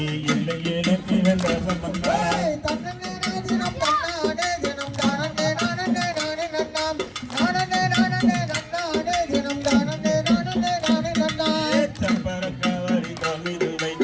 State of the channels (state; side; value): identical; both; correlation 1.00